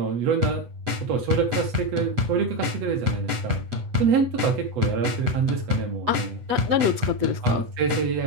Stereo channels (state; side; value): late; left; 8.0 ms